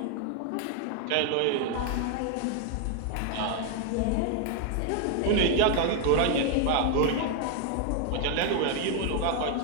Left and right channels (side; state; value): both; different; correlation 0.00